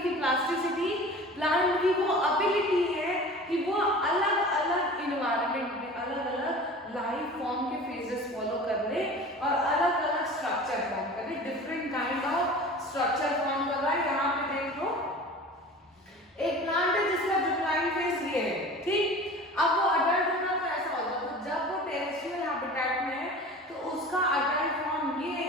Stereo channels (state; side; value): normal; both; correlation 0.39